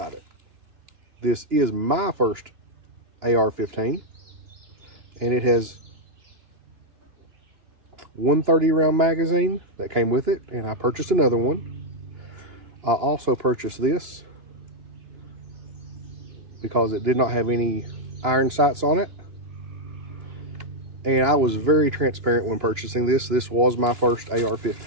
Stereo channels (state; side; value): late; left; 2.9 ms